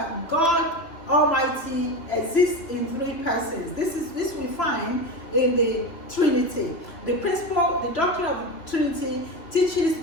God Almighty exists in three persons. This we find in the Trinity. The principle, the doctrine of the Trinity teaches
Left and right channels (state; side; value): late; right; 3.1 ms